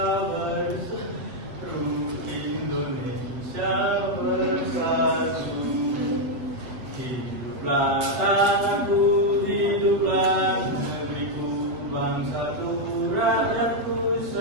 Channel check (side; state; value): left; late; 7.8 ms